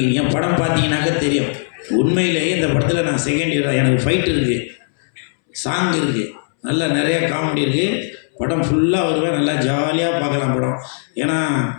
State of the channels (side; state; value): right; silent; 67 dB below the other